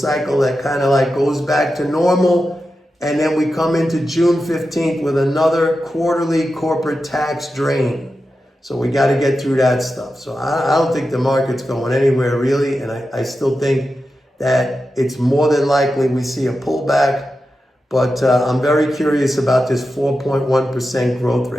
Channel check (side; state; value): both; normal; correlation 0.91